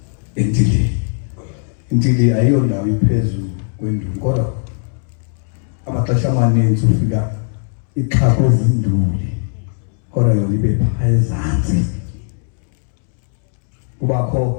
endilini. Indili ayiyondawo iphezulu kwenduli kodwa amaxesha amaninzi ufika ixhakwe ezinduli kodwa yona ibe phaa ezantsi.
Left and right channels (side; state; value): right; silent; 68 dB below the other